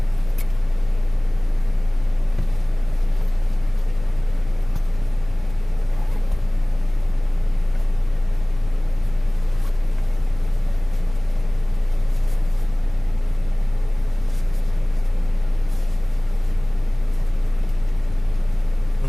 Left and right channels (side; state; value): right; noise; rumble, 15 dB below the sound